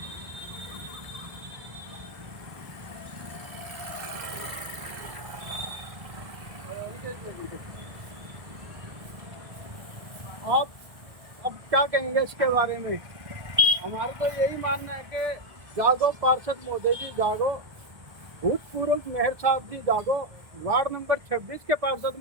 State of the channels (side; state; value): left; late; 1.5 ms